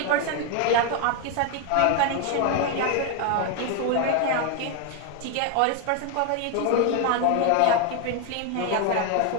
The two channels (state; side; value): different; both; correlation 0.01